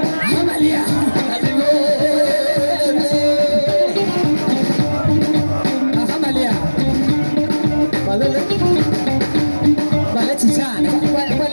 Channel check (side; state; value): both; inverted; correlation -1.00